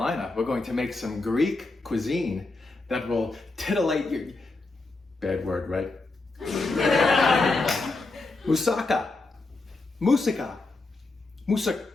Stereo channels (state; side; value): quieter; right; 3.3 dB